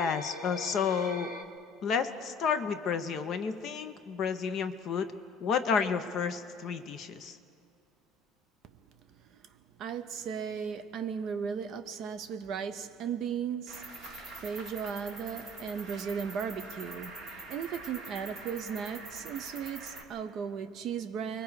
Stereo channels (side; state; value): both; normal; correlation 0.49